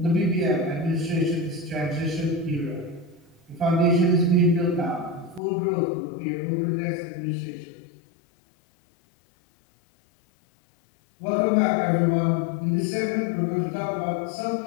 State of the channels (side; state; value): right; drops out; at 5.4 s